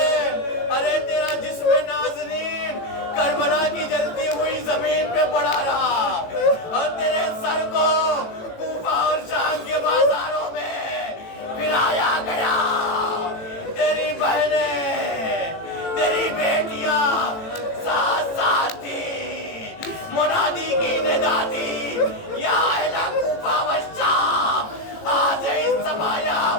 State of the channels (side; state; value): right; late; 18 ms